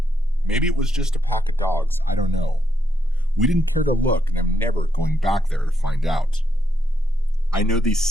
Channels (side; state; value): both; normal; correlation 0.80